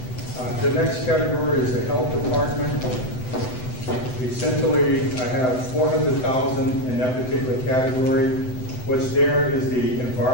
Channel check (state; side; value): late; right; 7.9 ms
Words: The next category is the health department. Essentially, I have $400,000 in that particular category. What's there is the